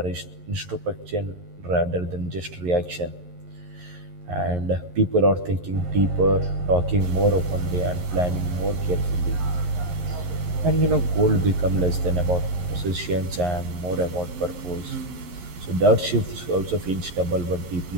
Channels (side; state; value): left; late; 11 ms